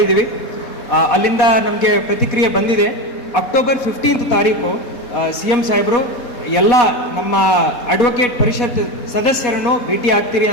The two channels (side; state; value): right; late; 4.1 ms